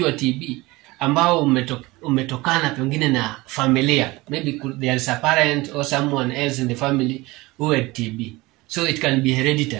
wa TB ambao umetokana pengine na familia, maybe there is a parent or someone else in the family who had TB, so it can be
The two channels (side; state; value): left; quieter; 21.4 dB